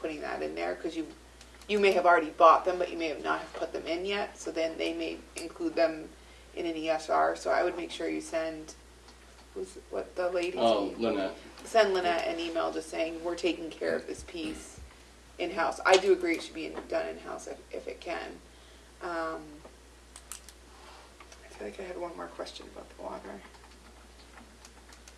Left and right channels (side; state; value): both; identical; correlation 1.00